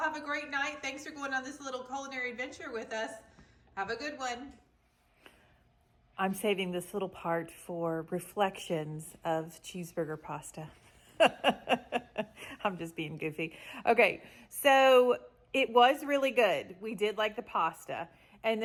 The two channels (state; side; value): identical; both; correlation 1.00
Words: a great night. Thanks for going on this little culinary adventure with us. Have a good one. I'm saving this little part for reflections of cheeseburger pasta. I'm just being goofy. Okay, so it was really good. We did like the pasta. And